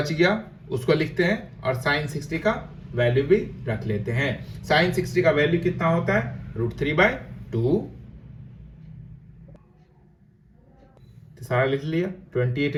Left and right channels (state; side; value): identical; both; correlation 1.00